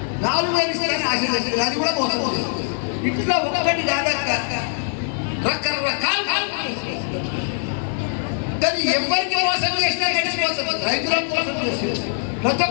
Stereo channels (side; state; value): right; silent; 64 dB below the other